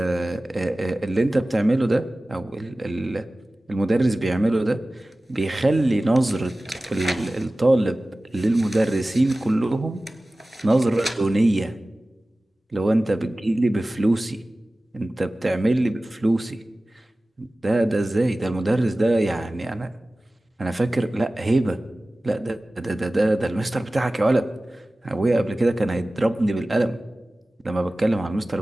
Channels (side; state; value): both; normal; correlation 0.97